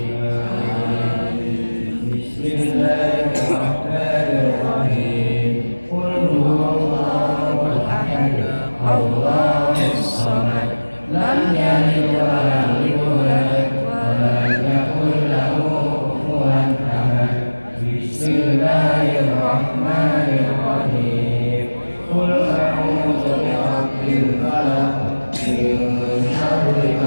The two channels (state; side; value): inverted; both; correlation -1.00